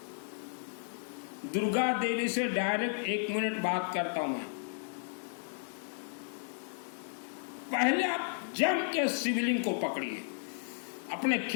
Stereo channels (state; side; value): silent; right; digital silence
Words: दुर्गा देवी से डायरेक्ट 1 मिनट बात करता हूं मैं। पहले आप जम के शिवलिंग को पकड़िए, अपने